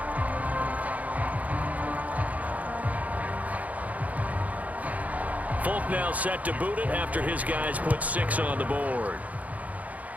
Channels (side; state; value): left; late; 0.073 ms